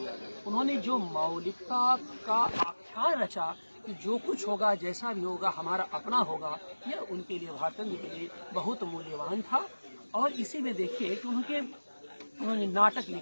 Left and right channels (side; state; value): both; inverted; correlation -1.00